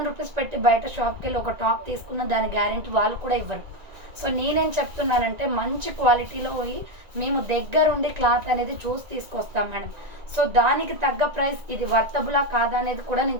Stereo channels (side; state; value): left; late; 1.9 ms